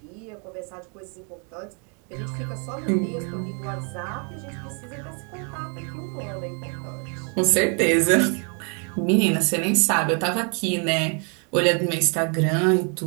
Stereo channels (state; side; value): quieter; left; 37.7 dB